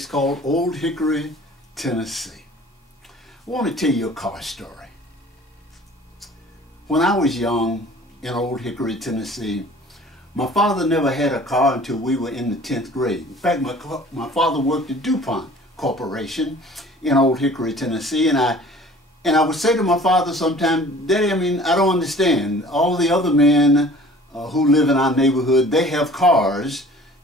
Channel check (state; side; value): normal; both; correlation 0.48